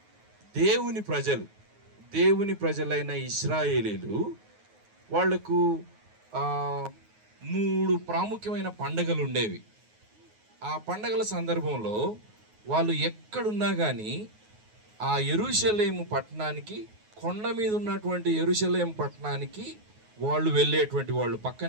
దేవుని ప్రజలైన ఇశ్రాయేలీలు. వాళ్లకు 3 ప్రాముఖ్యమైన పండుగలు ఉండేవి. ఆ పండుగల సందర్భంలో వాళ్ళు ఎక్కడున్నా కానీ ఆ యెరూషలేము పట్టణానికి, కొండ మీద ఉన్నటువంటి యెరూషలేము పట్టణానికి వాళ్ళు వెళ్ళేటువంటి వాళ్ళు.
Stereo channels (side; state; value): left; late; 9.4 ms